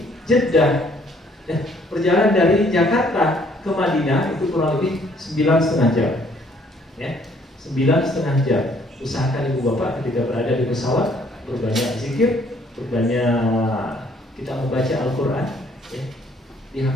Jeddah, perjalanan dari Jakarta ke Madinah itu kurang lebih 9,5 jam, ya, 9,5 jam. Usahakan Ibu Bapak ketika berada di pesawat berbanyak zikir, berbanyak kita membaca Al-Quran, ya. Di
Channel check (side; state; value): both; normal; correlation 0.63